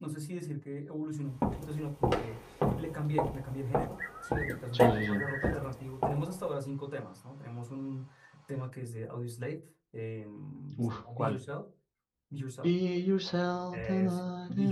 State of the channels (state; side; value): identical; both; correlation 1.00